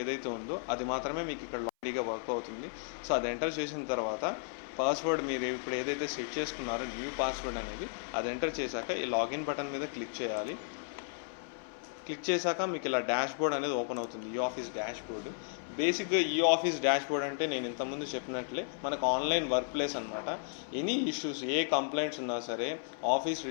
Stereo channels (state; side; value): silent; right; 55 dB below the other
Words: ఏదైతే ఉందో అది మాత్రమే మీకు ఇక్కడ రెడీగా వర్క్ అవుతుంది. సో అది ఎంటర్ చేసిన తర్వాత పాస్వర్డ్ మీరు ఇప్పుడు ఏదైతే సెట్ చేసుకున్నారో న్యూ పాస్వర్డ్ అనేది అది ఎంటర్ చేశాక ఈ లాగిన్ బటన్ మీద క్లిక్ చేయాలి. క్లిక్ చేశాక మీకు ఇలా డాష్ బోర్డ్ అనేది ఓపెన్ అవుతుంది, ఈ ఆఫీస్ డాష్ బోర్డ్. బేసిక్గా ఈ ఆఫీస్ డాష్ బోర్డ్ అంటే నేను ఇంతకుముందు చెప్పినట్లే మనకు ఆన్లైన్ వర్క్ ప్లేస్ అనమాట. ఎనీ ఇష్యూస్, ఏ కంప్లైంట్స్ ఉన్నా సరే ఆఫీస్